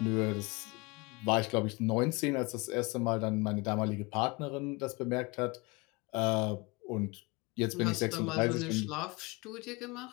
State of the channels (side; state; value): right; quieter; 26.1 dB